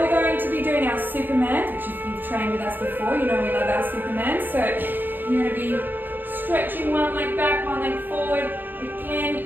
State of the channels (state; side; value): late; left; 0.091 ms